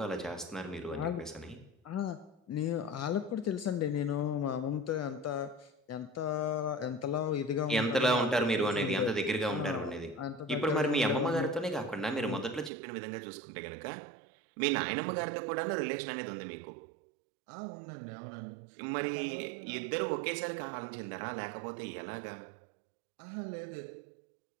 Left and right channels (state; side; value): drops out; left; at 12.7 s